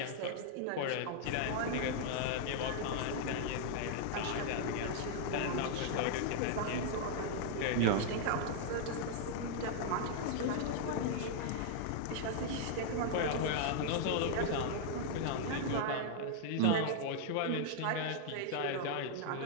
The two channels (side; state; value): both; different; correlation -0.01